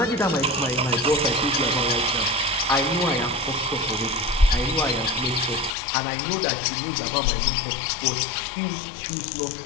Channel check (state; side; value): drops out; right; at 5.7 s